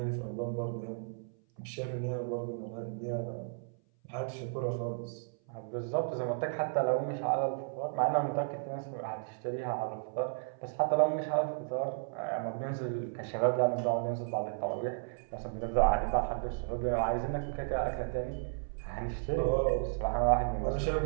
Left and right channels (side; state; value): left; silent; 55 dB below the other